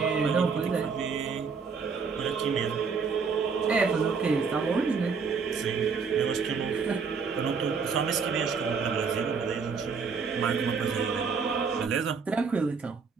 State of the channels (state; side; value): quieter; left; 5.4 dB